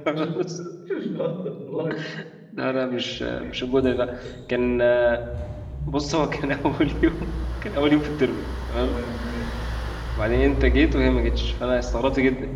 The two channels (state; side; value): identical; both; correlation 1.00